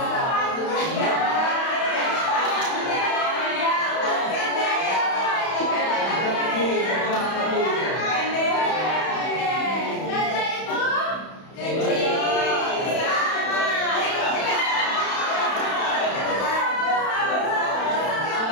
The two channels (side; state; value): right; late; 31 ms